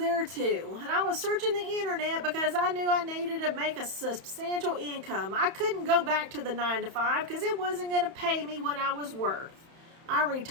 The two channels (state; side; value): late; left; 31 ms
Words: too. And I was searching the internet because I knew I needed to make a substantial income. I couldn't go back to the 9 to 5 because it wasn't going to pay me what I was worth. I